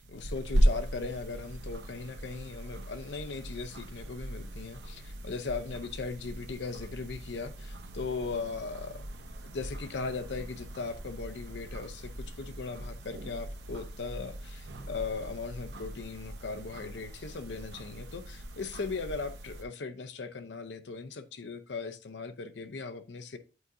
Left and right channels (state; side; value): normal; both; correlation 0.52